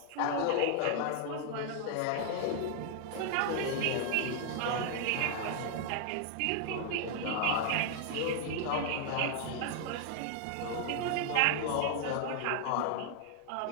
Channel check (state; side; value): different; both; correlation 0.00